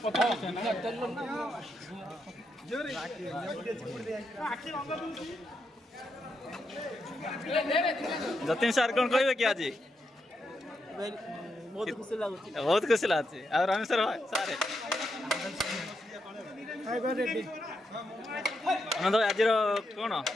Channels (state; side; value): normal; both; correlation 0.83